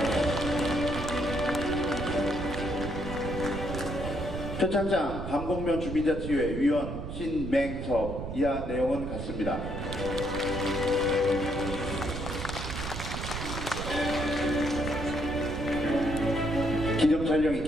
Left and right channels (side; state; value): right; noise; rumble, 6 dB below the sound